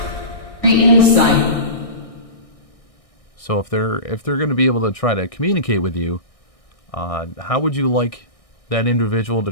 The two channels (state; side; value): late; right; 1.6 ms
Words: Insight. So if they're going to be able to try to communicate with you, how would you like that individual to